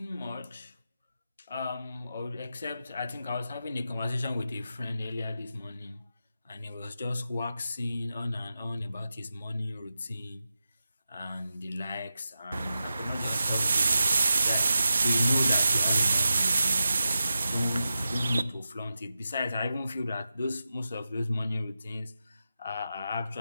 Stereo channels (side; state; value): both; inverted; correlation -0.90